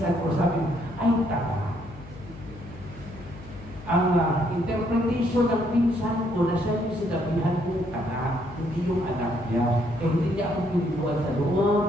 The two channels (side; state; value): left; noise; hum, 17 dB below the sound